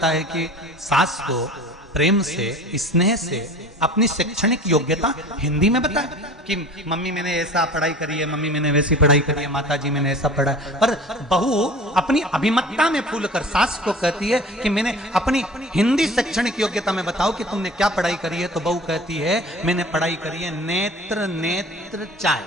है कि सास को प्रेम से स्नेह से अपनी शैक्षणिक योग्यता हिंदी में बताए कि मम्मी मैंने ऐसा पढ़ाई करी है, मम्मी मैंने वैसी पढ़ाई करी है, माता जी मैंने ऐसा पढ़ा है। पर बहू अपनी अभिमतता में फूल कर सास को कहती है कि मैंने अपनी हिंदी शैक्षणिक योग्यता में बताओ कि तुमने क्या पढ़ाई करी है। तो बहू कहती है मैंने पढ़ाई करी है नेत्र नेत्र चाय।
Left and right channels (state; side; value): normal; both; correlation 0.42